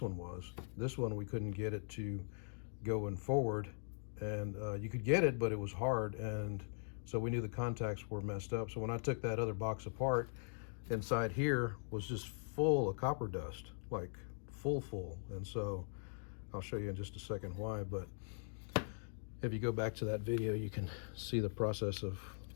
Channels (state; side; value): silent; right; digital silence